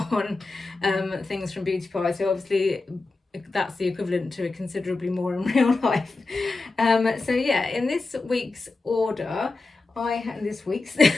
things from Beauty Pie. So obviously that's the equivalent to considerably more in real life. So yeah, in this week's order,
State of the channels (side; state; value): right; quieter; 3.5 dB